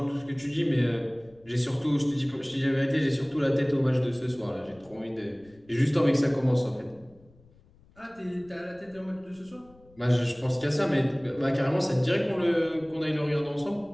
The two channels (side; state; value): left; noise; rumble, 28 dB below the sound